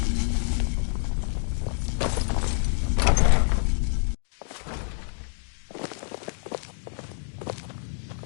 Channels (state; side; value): silent; right; 60 dB below the other